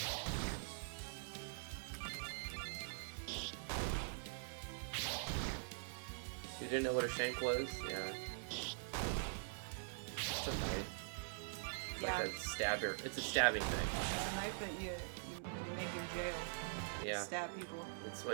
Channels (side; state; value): left; silent; digital silence